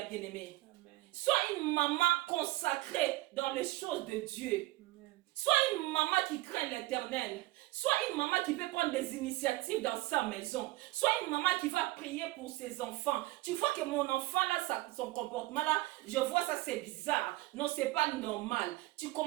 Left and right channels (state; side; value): quieter; left; 19.5 dB